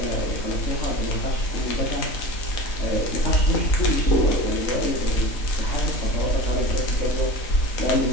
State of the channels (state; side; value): late; right; 3.9 ms